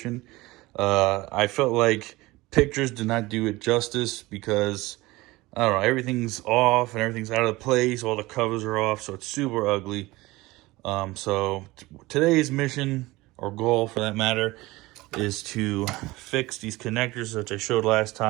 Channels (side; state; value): left; quieter; 20.3 dB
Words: I felt like pictures did not do it justice because I don't know, everything's off and everything's out of place. All the covers are off, so it's super ugly. So today's mission, or goal for that matter, is to fix these connectors that I showed last